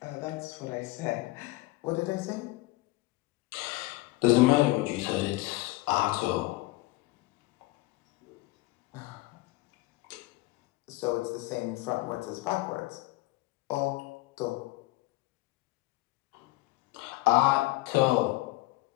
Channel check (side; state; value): right; quieter; 20.0 dB